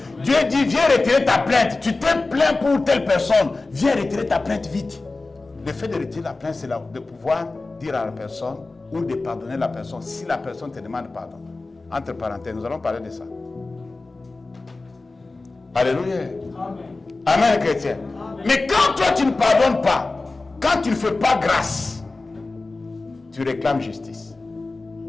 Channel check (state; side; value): quieter; right; 3.4 dB